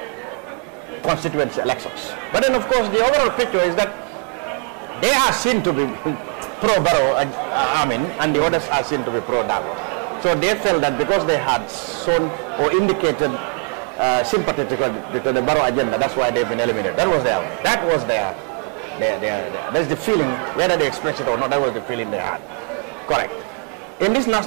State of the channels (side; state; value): left; quieter; 36.7 dB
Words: constituency elections. But then, of course, the overall picture is that they are seen to be pro-Barrow, and the others are seen to be pro-Dam. So they felt that because they had shown or indicated sympathy to the Barrow agenda, that's why they've been eliminated. There's the feeling, whether they expressed it or not, that was the feeling they had. Correct. In this